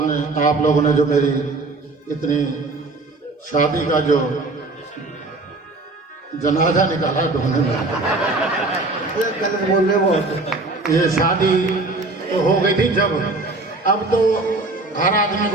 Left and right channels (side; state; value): left; quieter; 3.2 dB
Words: लोगों ने जो मेरी इतनी शादी का जो जनाजा निकाला ढूंढने में, बोल रहे वो ये शादी तो हो गई थी जब, अब तो हर आदमी